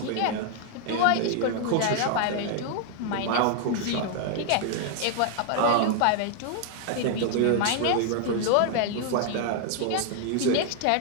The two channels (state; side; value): different; both; correlation 0.00